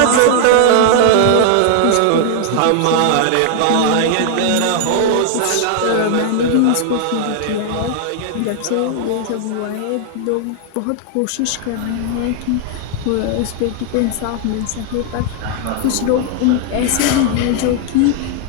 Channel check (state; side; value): different; both; correlation 0.00